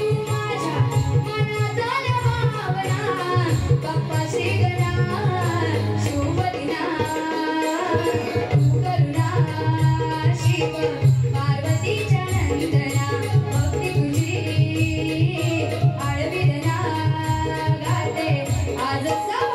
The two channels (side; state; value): both; identical; correlation 1.00